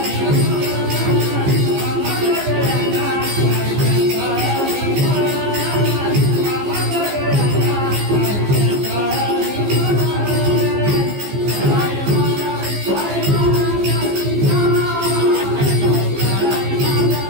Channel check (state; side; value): late; left; 15 ms